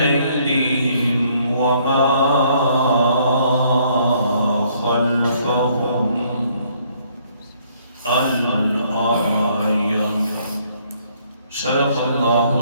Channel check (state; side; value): inverted; both; correlation -0.66